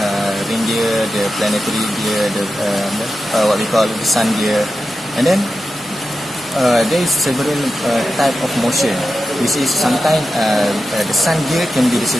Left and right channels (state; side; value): normal; both; correlation 0.90